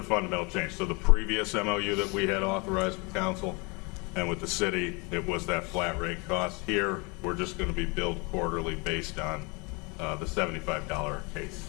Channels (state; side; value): quieter; right; 28.4 dB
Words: fundamental change. So the previous MOU that we had authorized with council and with the city, it was that flat rate cost. Here, we're just going to be billed quarterly based on the $75 a case.